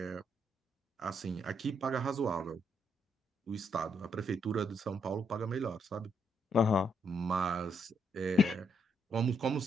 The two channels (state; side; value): normal; both; correlation 0.75